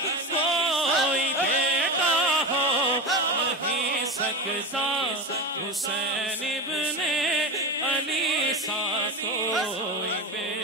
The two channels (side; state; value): both; normal; correlation 0.22